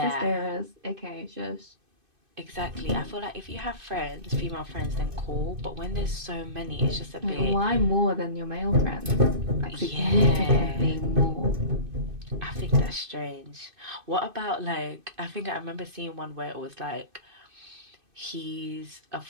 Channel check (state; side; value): late; left; 2.5 ms